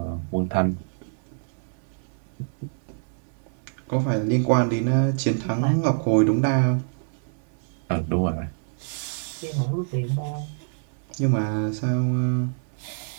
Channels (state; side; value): silent; left; 61 dB below the other